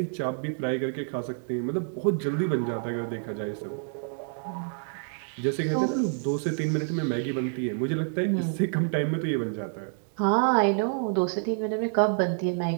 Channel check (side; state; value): left; silent; digital silence